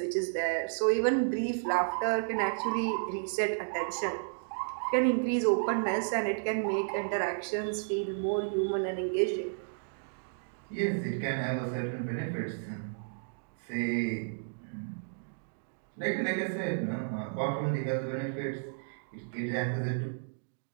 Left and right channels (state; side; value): silent; left; digital silence